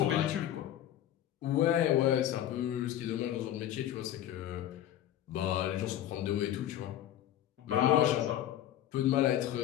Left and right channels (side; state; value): right; quieter; 11.9 dB